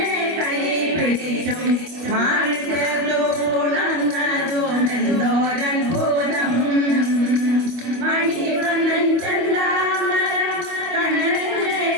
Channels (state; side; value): late; left; 25 ms